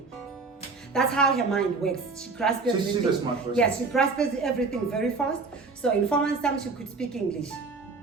That's how her mind works. She grasps everything. She's a smart person. Yes, she grasps everything very fast. So in 4 months' time, she could speak English.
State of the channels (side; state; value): left; quieter; 4.2 dB